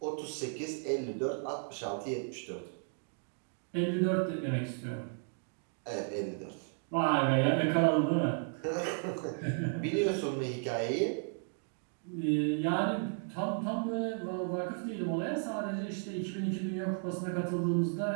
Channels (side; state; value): left; silent; 55 dB below the other